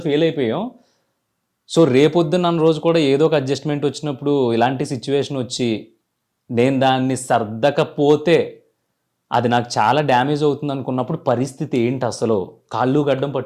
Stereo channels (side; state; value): both; identical; correlation 1.00